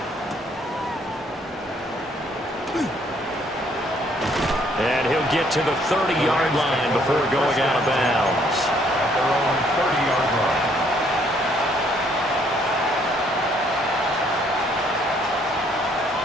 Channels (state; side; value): normal; both; correlation 0.66